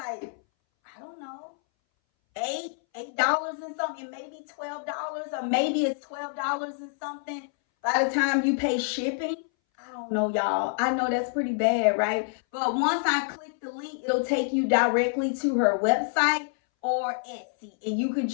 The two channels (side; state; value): right; silent; 60 dB below the other